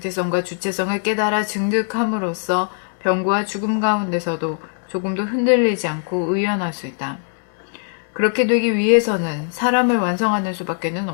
주체성을 깨달아 증득함으로써 병고와 죽음 가운데서도 조금도 흔들리지 않고 의연할 수 있다. 그렇게 되기 위해서는 사람을 완성하는 수밖에는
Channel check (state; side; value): silent; right; digital silence